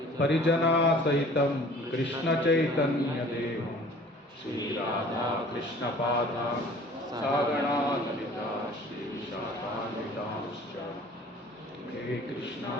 ಪರಿಜನಾಸಹಿತಂ ಕೃಷ್ಣಚೈತನ್ಯದೇವಂ ಶ್ರೀರಾಧಾ ಕೃಷ್ಣಪಾದಾನ್ ಸಾಗಣಾ ಲಲಿತಾ ಶ್ರೀವಿಶಾಖಾನ್ವಿತಾಂಶ್ಚ. ಹೇ ಕೃಷ್ಣ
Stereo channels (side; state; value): both; normal; correlation 0.49